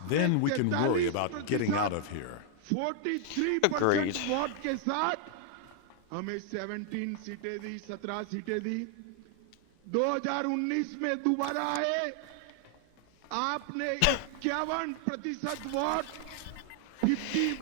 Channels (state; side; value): different; both; correlation 0.00